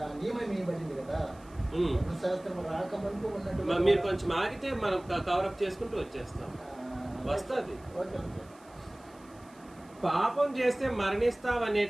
నియమం ఇవ్వబడింది కదా. ధర్మశాస్త్రం రాకముందు ఉన్నట్టు మీరు కొంచెం ఆగితే మనం కవరప్ చేసుకుంటూ వచ్చేస్తాం, వస్తుంది. పాపం చేస్తే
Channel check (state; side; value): noise; right; hiss, 28 dB below the sound